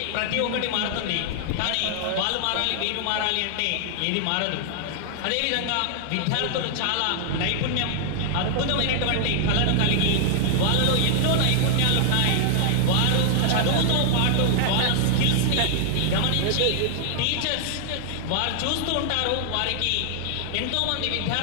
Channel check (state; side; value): different; both; correlation 0.00